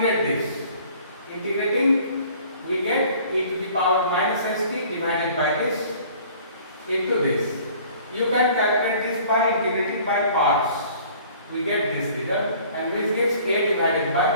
this. Integrating, we get e to the power minus st divided by this into this. You can calculate this by integrating by parts. We get this result, and which gives a divided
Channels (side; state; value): both; inverted; correlation -0.52